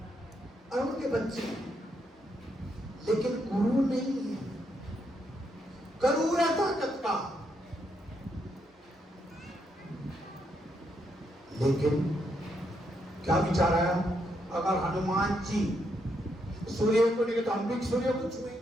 और उनके बच्चे, लेकिन गुरु नहीं है। करूर है ताकत का, लेकिन क्या विचार आया, अगर हनुमान जी सूर्य को नहीं तो हम भी सूर्य को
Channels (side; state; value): both; normal; correlation 0.78